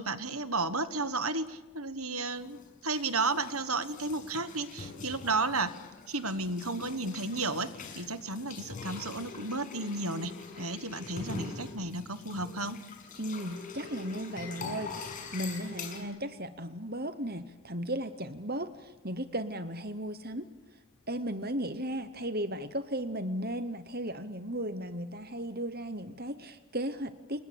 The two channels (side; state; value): both; normal; correlation 0.17